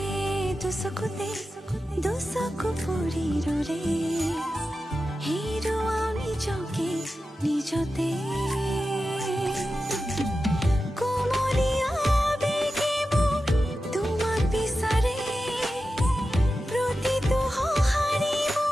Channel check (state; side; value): normal; both; correlation 0.92